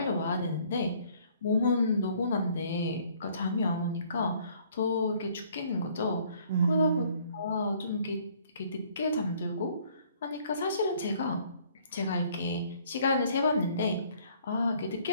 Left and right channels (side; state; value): both; inverted; correlation -0.60